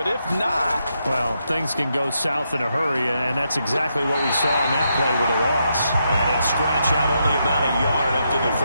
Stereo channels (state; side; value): inverted; both; correlation -0.81